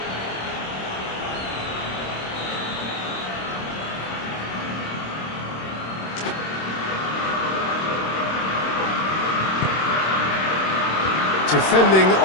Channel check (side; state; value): right; late; 26 ms